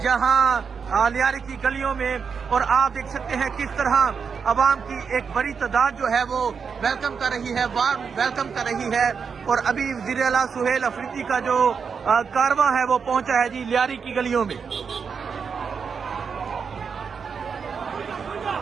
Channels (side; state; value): left; quieter; 6.0 dB